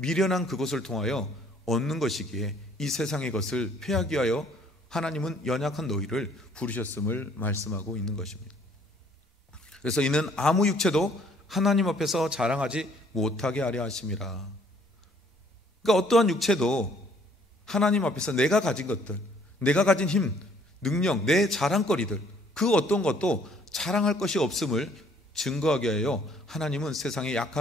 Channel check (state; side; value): normal; both; correlation 0.61